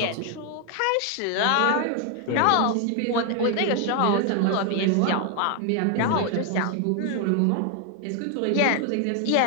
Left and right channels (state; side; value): different; both; correlation 0.00